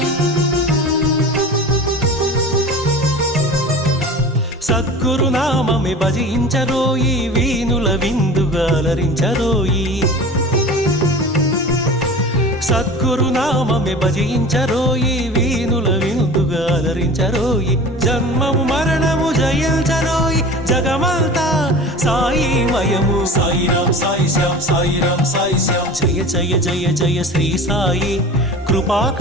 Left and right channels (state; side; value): normal; both; correlation 0.37